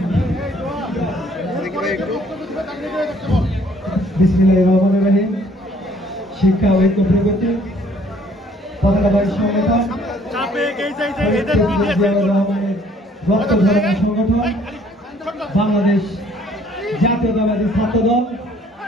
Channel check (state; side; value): normal; both; correlation 0.60